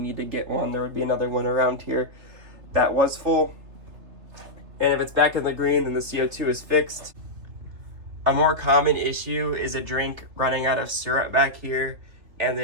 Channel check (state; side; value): late; left; 3.2 ms